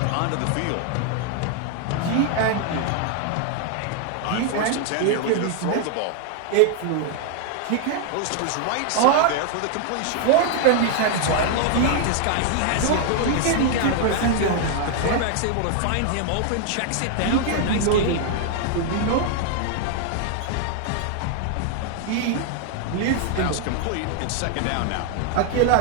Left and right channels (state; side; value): different; both; correlation 0.00